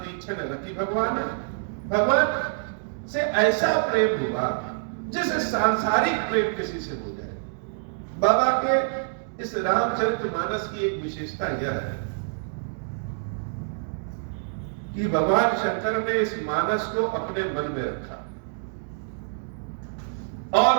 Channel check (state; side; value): silent; left; digital silence